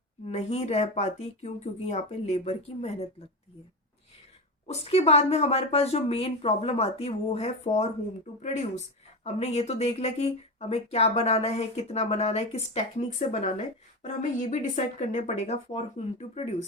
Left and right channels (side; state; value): both; normal; correlation 0.19